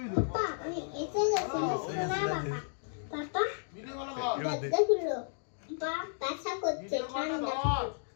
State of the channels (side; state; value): right; silent; digital silence